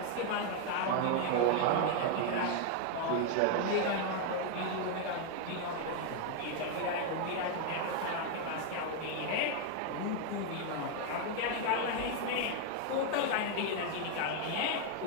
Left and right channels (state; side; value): different; both; correlation 0.00